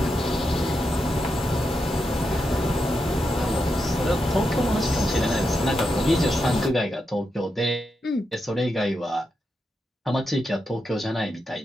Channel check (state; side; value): normal; both; correlation 0.86